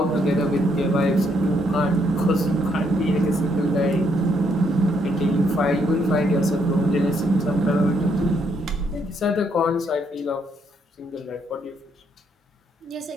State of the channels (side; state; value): both; normal; correlation 0.73